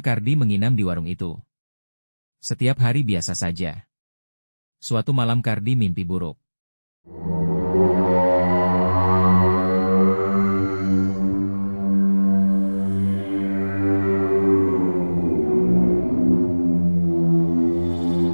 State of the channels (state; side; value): inverted; both; correlation -1.00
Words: Kardi menginap di warung itu, setiap hari biasa saja. Suatu malam Kardi mimpi buruk.